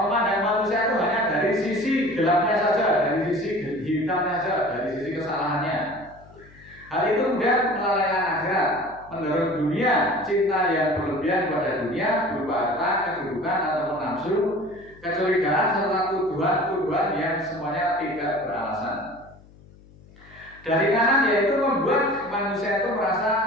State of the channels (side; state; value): left; noise; hum, 24 dB below the sound